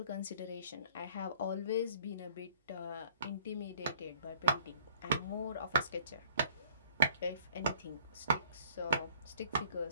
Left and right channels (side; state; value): both; inverted; correlation -0.55